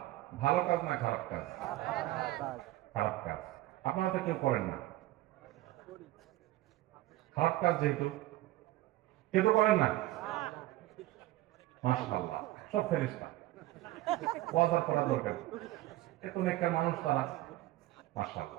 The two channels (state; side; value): quieter; left; 16.6 dB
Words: ভালো কাজ না খারাপ কাজ? খারাপ কাজ। আপনারা তো কেউ করেন না, খারাপ কাজ যেহেতু কেউ তো করেন না। মাশাআল্লাহ, সব ফেরেশতা, ওয়াজ করা দরকার, এত নেককার মানুষ তারা,